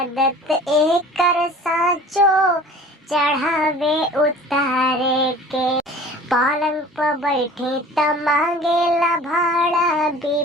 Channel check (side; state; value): both; normal; correlation 0.44